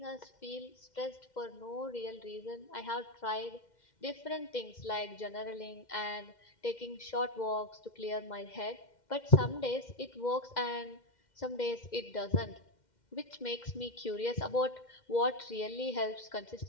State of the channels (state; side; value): late; right; 2.1 ms